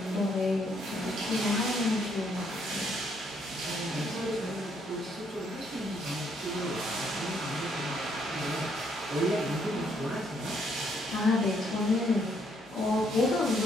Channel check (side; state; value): both; normal; correlation 0.71